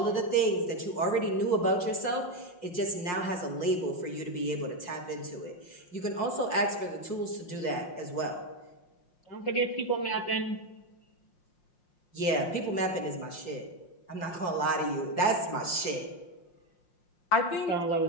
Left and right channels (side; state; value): right; late; 5.6 ms